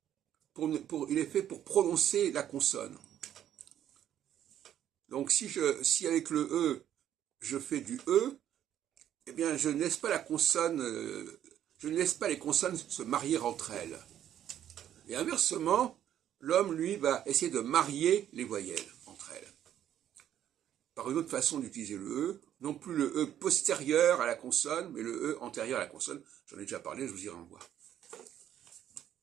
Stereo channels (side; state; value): left; quieter; 10.7 dB